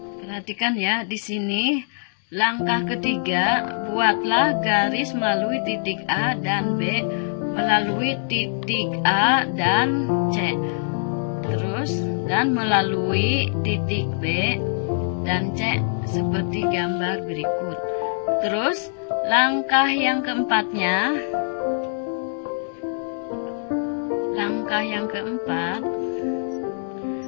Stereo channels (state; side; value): silent; right; digital silence